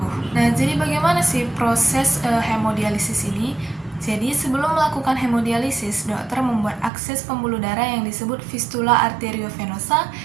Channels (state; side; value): drops out; left; at 6.9 s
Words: Nah, jadi bagaimana sih proses hemodialisis ini? Jadi, sebelum melakukan hemodialisis, dokter membuat akses pembuluh darah yang disebut fistula arteriovenosa,